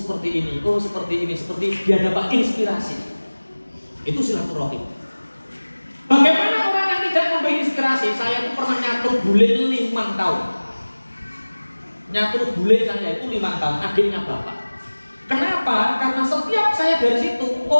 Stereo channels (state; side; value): inverted; both; correlation -1.00